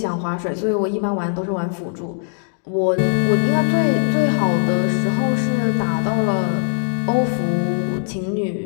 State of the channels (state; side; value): silent; right; digital silence